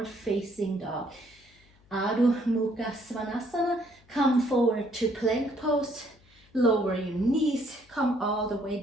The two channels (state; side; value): noise; left; hum, 30 dB below the sound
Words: facing dog. Adho Mukha Svanasana. Come forward to plank pose. Lower your knees, come all the way